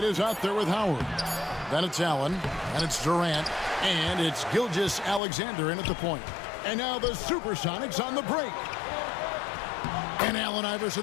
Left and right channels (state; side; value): drops out; right; at 5.2 s